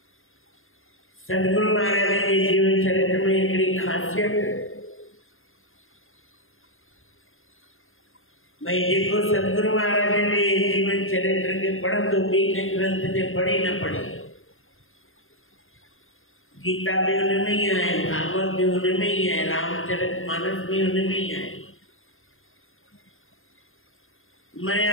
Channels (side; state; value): right; late; 0.60 ms